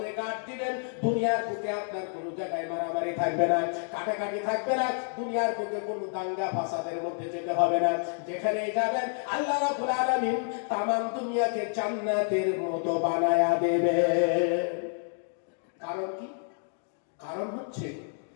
গাঁট দিবেন। দুনিয়ার বুকে আপনার কোনো জায়গায় মারামারি থাকবে না, কাটাকাটি থাকবে না, দুনিয়ার বুকে কোনো দাঙ্গা ফাসাদের মধ্যে যেতে হবে না। যেখানেই যাবেন আল্লাহ রাব্বুল আলামিন তামাম দুনিয়াকে জান্নাতের মতো বানায়া দেবে। কারণ কি? কারণ হচ্ছে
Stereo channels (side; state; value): right; silent; 56 dB below the other